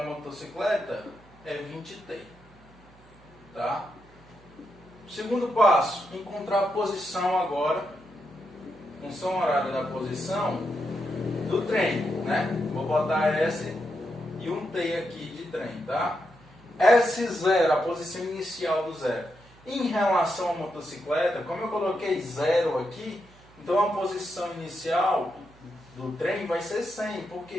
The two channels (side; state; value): right; noise; hum, 26 dB below the sound